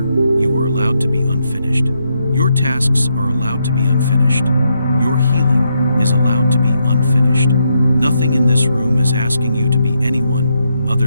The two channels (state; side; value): inverted; both; correlation -0.80